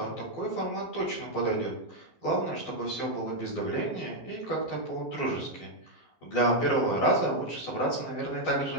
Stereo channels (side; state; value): right; late; 15 ms